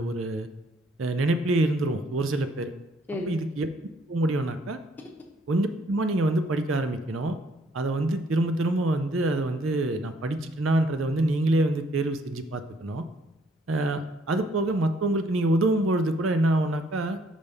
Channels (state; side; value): normal; both; correlation 0.65